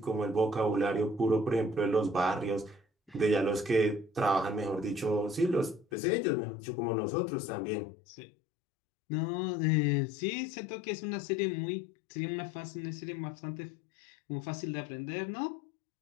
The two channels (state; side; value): drops out; right; at 5.9 s